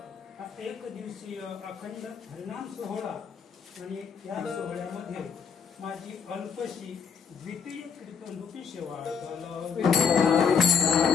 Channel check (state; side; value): quieter; right; 6.3 dB